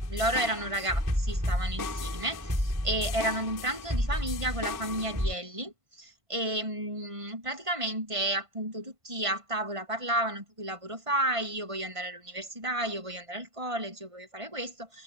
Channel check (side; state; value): left; late; 1.5 ms